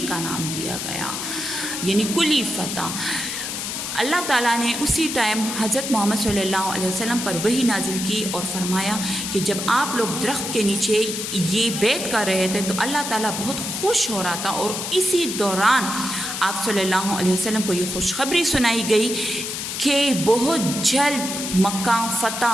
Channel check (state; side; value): noise; left; hiss, 4 dB below the sound